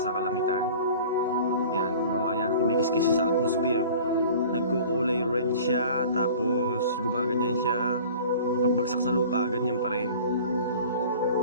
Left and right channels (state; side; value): inverted; both; correlation -0.43